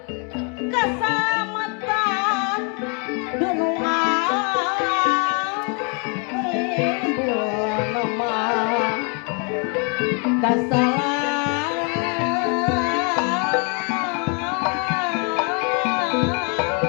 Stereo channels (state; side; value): quieter; right; 35.6 dB